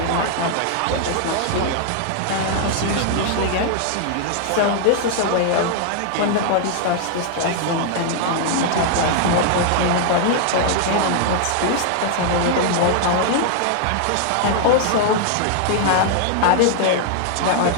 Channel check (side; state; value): both; different; correlation 0.00